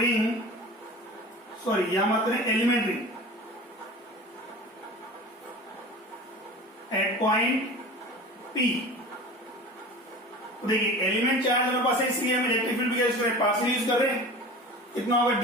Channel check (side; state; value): both; normal; correlation 0.36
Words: sorry यहां मत करें, element ring at point P। देखिए एलिमेंट चार्ज हमारे पास है, इसलिए हम इलेक्ट्रिक फील्ड भी यूज कर रहे हैं, पार्शियल यूज कर रहे हैं। कितना होगा,